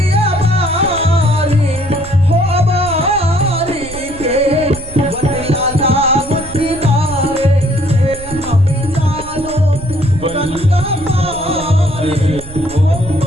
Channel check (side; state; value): right; noise; rumble, 15 dB below the sound